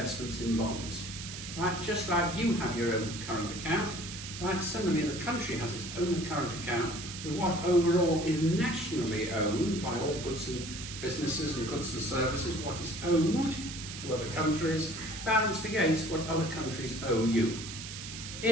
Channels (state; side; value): noise; right; hiss, 9 dB below the sound